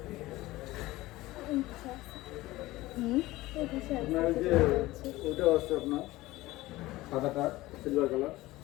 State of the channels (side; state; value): right; quieter; 18.3 dB